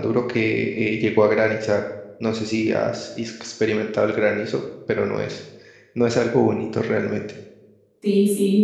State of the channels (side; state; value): both; identical; correlation 1.00